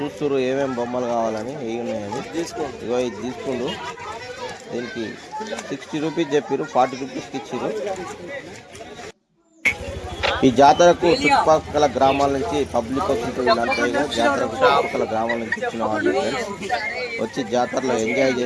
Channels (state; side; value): identical; both; correlation 1.00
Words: ఏమేమి బొమ్మలు కావాలని, ఏమి ఉన్నాయని. ఇది తీసుకుండు. దీనికి 60 రూపీస్ చెప్పారు, 40 రూపీస్కి ఇచ్చారు. ఈ జాతరకు చుట్టుపక్కల గ్రామాల నుంచి పబ్లిక్ వస్తుంటుంది. జాతరకు చుట్టుపక్కల గ్రామాల నుంచి ఇచ్చిన వాళ్ళు వచ్చి జాతరలో ఎంజాయ్